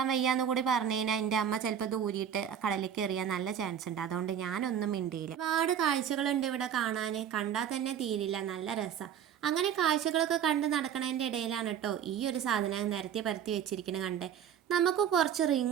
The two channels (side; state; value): left; quieter; 8.9 dB